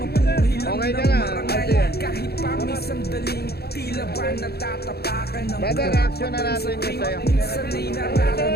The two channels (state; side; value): late; right; 0.46 ms